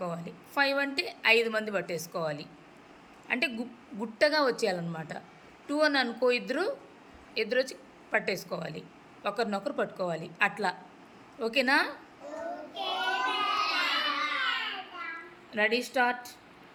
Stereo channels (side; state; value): both; identical; correlation 1.00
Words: 5 అంటే 5 మంది పట్టేసుకోవాలి. అంటే గుట్టగా వచ్చేయాలన్నమాట. 2 అని అనుకో, ఇద్దరు వచ్చి పట్టేసుకోవాలి, ఒకరినొకరు పట్టుకోవాలి. అట్లా ఓకేనా? Ready, start.